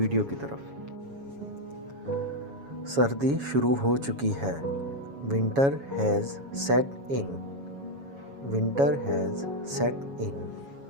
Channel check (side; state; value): left; late; 7.2 ms